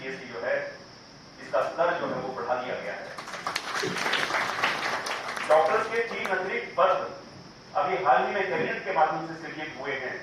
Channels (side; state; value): both; identical; correlation 1.00